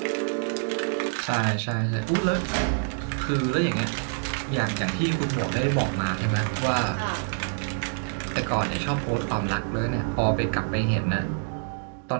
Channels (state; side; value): silent; left; digital silence